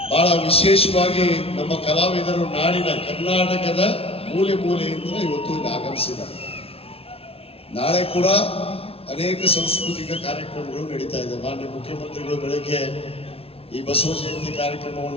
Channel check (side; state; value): right; late; 0.28 ms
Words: ಬಹಳ ವಿಶೇಷವಾಗಿ ನಮ್ಮ ಕಲಾವಿದರು ನಾಡಿನ ಕರ್ನಾಟಕದ ಮೂಲೆ ಮೂಲೆಯಿಂದ ಇವತ್ತು ಇಲ್ಲಿ ಆಗಮಿಸಿದ್ದಾರೆ. ನಾಳೆ ಕೂಡ ಅನೇಕ ಸಾಂಸ್ಕೃತಿಕ ಕಾರ್ಯಕ್ರಮಗಳು ನಡೀತಾ ಇದೆ. ಮಾನ್ಯ ಮುಖ್ಯಮಂತ್ರಿಗಳು ಬೆಳಗ್ಗೆ ಈ ಬಸವ ಜಯಂತಿ